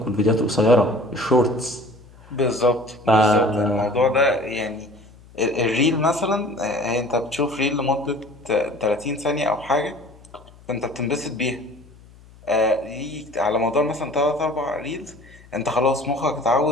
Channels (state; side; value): noise; left; hum, 24 dB below the sound